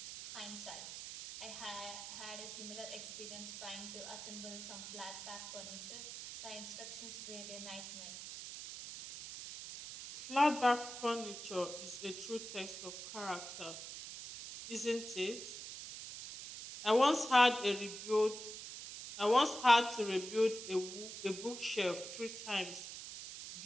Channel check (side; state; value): right; noise; hiss, 9 dB below the sound